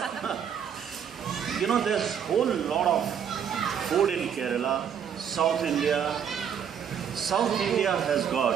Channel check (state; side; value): quieter; left; 8.1 dB